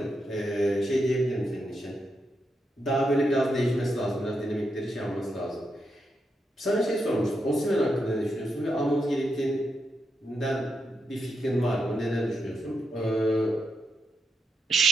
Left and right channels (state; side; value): normal; both; correlation 0.84